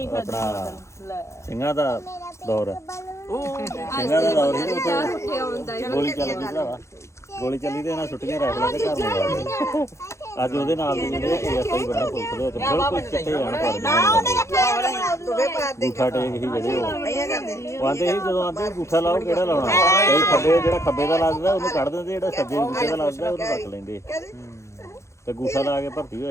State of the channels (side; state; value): right; late; 0.14 ms